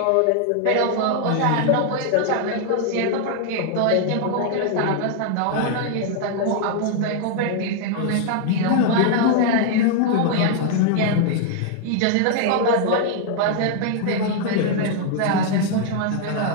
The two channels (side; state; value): both; different; correlation 0.00